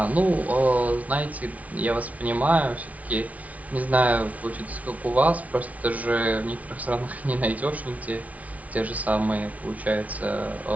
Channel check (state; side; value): late; left; 0.069 ms